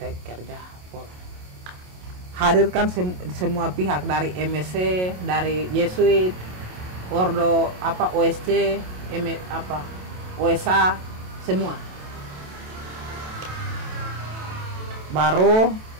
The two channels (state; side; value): late; left; 27 ms